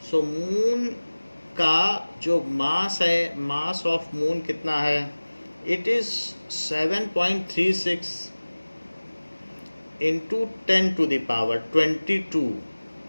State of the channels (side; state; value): both; inverted; correlation -1.00